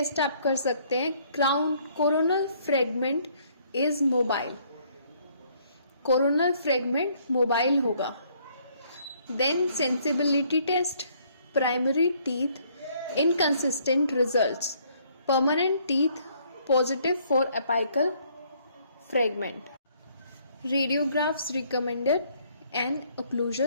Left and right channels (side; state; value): both; inverted; correlation -0.65